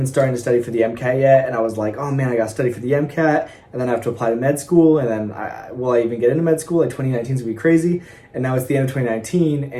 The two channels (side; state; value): both; identical; correlation 1.00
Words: starting to study for the MCAT yet. And I was like, oh man, I got to study for the MCAT. And then I have to apply to med school. And then will I even get into med school? Like 2019 is going to be crazy. And now it's the end of 2019